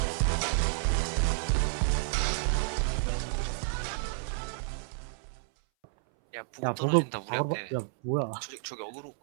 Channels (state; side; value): silent; left; 57 dB below the other